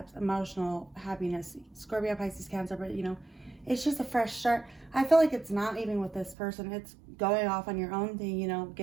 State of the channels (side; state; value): left; drops out; at 6.4 s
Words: emotional, happiness, Scorpio, Pisces, Cancer, but, it's just a fresh start. I feel like it's not even with this person. It's going off on your own thing,